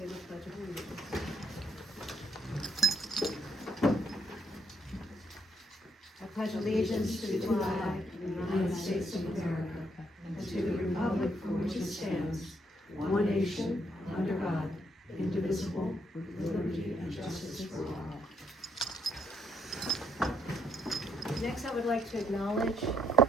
Pledge of Allegiance. I pledge allegiance to the flag of the United States of America and to the republic for which it stands, one nation, under God, indivisible, with liberty and justice for all. Next, I would like to acknowledge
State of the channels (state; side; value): normal; both; correlation 0.72